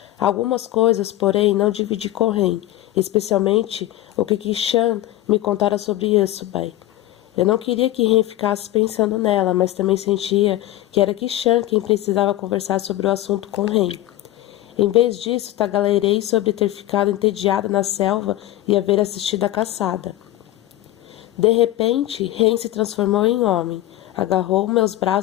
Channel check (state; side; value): quieter; right; 14.9 dB